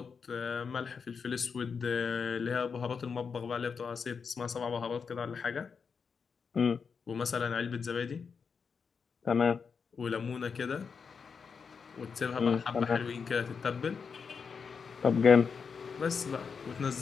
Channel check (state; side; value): quieter; right; 5.8 dB